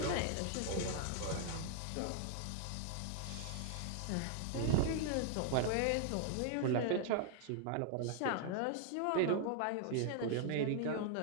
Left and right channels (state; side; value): different; both; correlation 0.00